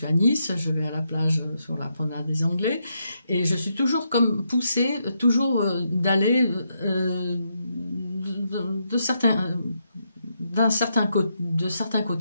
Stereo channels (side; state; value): both; inverted; correlation -0.80